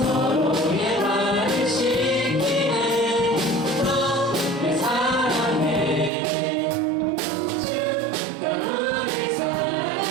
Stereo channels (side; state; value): left; drops out; at 6.1 s